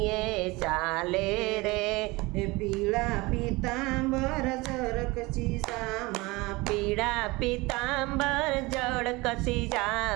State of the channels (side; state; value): left; quieter; 22.9 dB